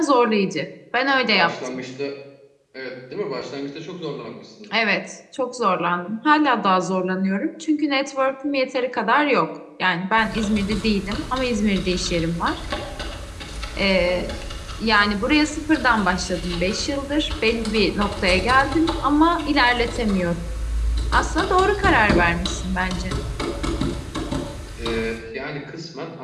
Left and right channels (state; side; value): identical; both; correlation 1.00